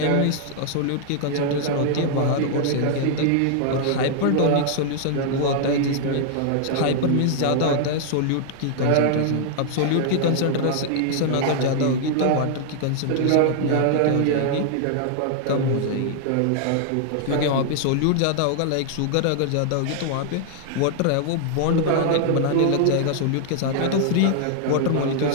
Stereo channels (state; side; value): different; both; correlation -0.01